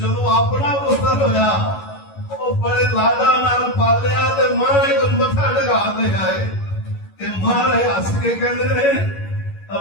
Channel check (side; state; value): right; late; 11 ms